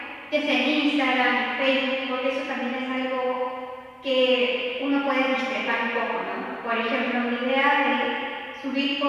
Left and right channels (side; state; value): both; identical; correlation 1.00